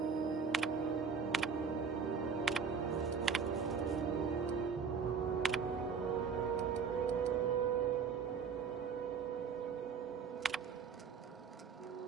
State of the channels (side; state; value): left; quieter; 5.9 dB